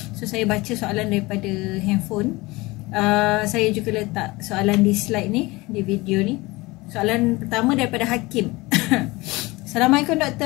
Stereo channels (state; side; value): quieter; right; 22.1 dB